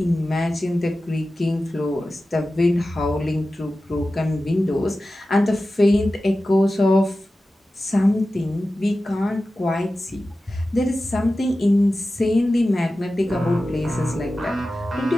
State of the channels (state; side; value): normal; both; correlation 0.94